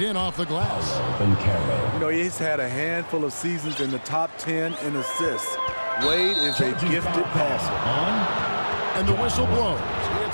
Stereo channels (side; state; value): both; inverted; correlation -1.00